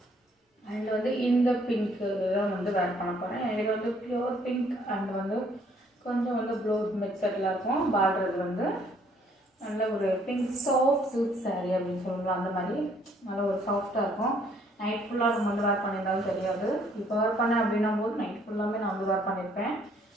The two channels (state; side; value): normal; both; correlation 0.64